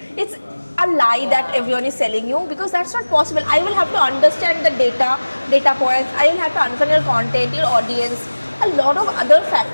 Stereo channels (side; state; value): both; inverted; correlation -1.00